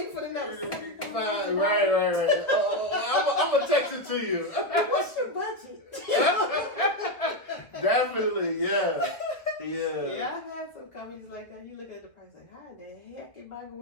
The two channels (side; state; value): right; late; 1.5 ms